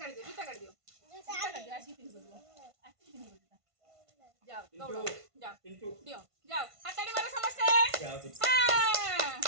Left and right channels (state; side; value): late; left; 1.5 ms